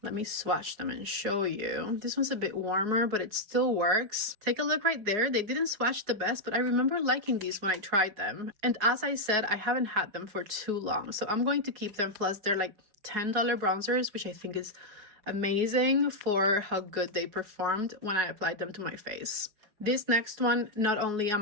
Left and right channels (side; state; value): left; late; 4.7 ms